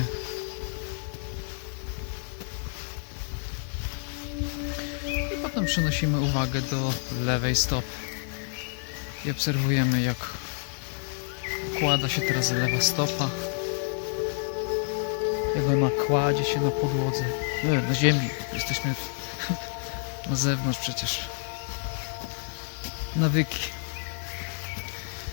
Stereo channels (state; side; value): silent; right; 59 dB below the other